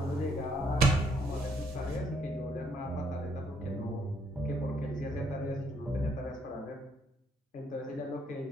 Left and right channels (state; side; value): normal; both; correlation 0.69